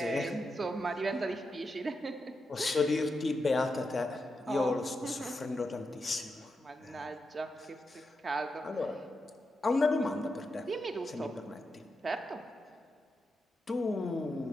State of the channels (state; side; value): normal; both; correlation 0.87